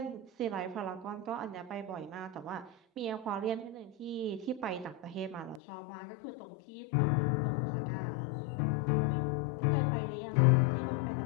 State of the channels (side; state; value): right; drops out; at 5.6 s